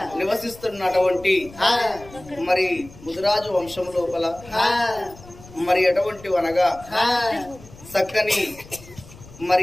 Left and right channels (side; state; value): left; noise; rumble, 20 dB below the sound